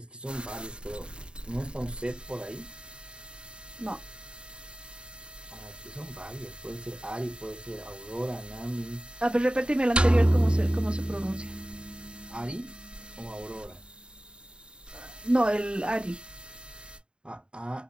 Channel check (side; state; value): left; late; 0.051 ms